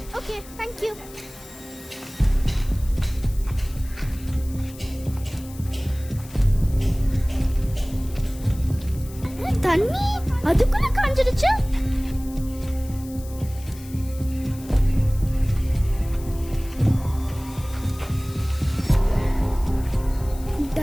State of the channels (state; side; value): noise; left; hiss, 19 dB below the sound